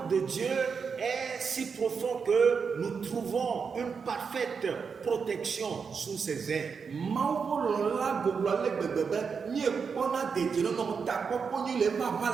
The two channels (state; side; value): quieter; left; 5.8 dB